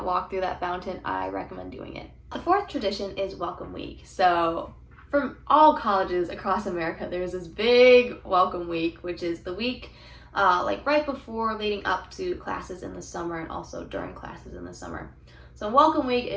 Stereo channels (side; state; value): both; identical; correlation 1.00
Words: walked through that fountain, I recommend doing it. The fourth tradition is Welcome Week. So from all colleges across America, there's this big Welcome Week, which is the week like right before leading up to classes in the summer and also during classes in the summer. So Welcome Week